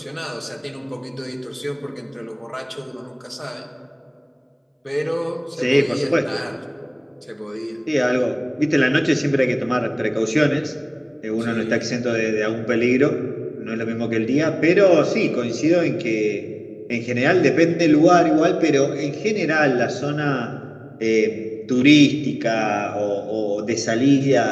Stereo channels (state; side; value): identical; both; correlation 1.00